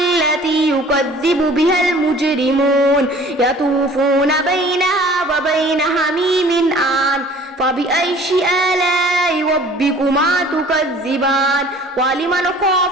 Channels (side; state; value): both; normal; correlation 0.50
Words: يكذب بها المجرمون يطوفون بينها وبين حميم آن فبأي آلاء ربكما تكذبان ولمن